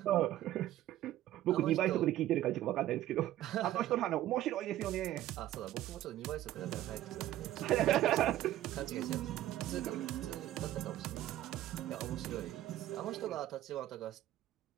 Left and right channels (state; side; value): quieter; left; 13.8 dB